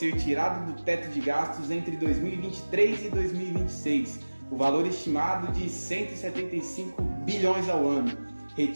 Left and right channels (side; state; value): both; inverted; correlation -1.00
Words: tirados do teto de gastos entre 2023 e 2026, o valor estimado de 175 bilhões ao ano.